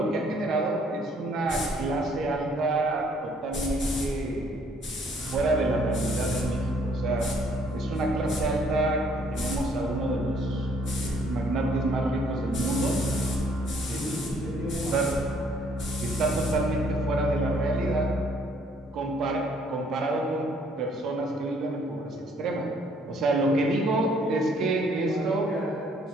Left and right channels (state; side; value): normal; both; correlation 0.64